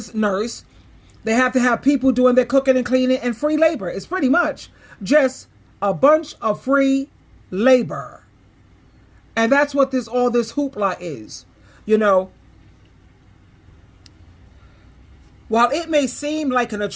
nurse. They have to have people doing their cooking and cleaning and free labor. It's pretty much just a bunch of free labor. And that's what all this hoopla is. You know, while it may seem like an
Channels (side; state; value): both; identical; correlation 1.00